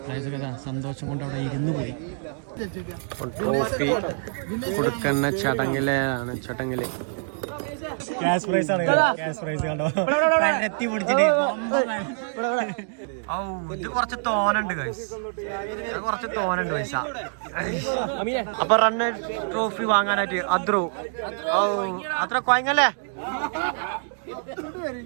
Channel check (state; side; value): silent; left; digital silence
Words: സന്തോഷം കൊണ്ട് അവിടെ ഇരുന്ന് പോയി. ട്രോഫി കൊടുക്കുന്ന ചടങ്ങില് ക്യാഷ് പ്രൈസ് ആണ്. കണ്ടോ എത്തി പിടിച്ചിട്ട്. ഇത് കുറച്ച് തോനുണ്ട് പൈസ. അപ്പൊ റണ്ണ് ട്രോഫി വാങ്ങാനായിട്ട് അത്ര കൊയങ്ങല്ലേ.